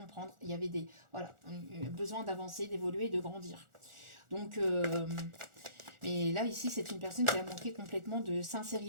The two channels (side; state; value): left; late; 1.4 ms